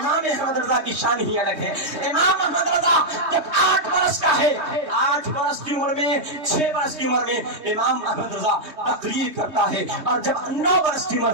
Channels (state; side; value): late; left; 3.2 ms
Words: احمد رضا کی شان ہی الگ ہے۔ امام احمد رضا جب 8 برس کا ہے، 8 برس کی عمر میں، 6 برس کی عمر میں امام احمد رضا تقریر کرتا ہے، اور جب 9 برس کی عمر